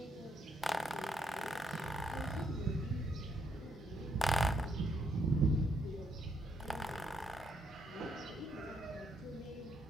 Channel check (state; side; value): normal; both; correlation 0.75